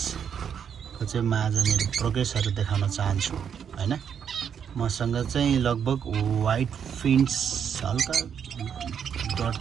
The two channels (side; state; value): left; quieter; 7.8 dB